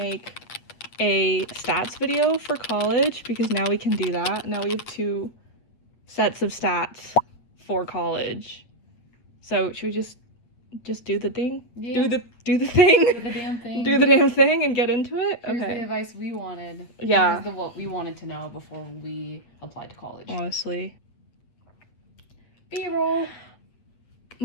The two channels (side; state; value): right; late; 8.6 ms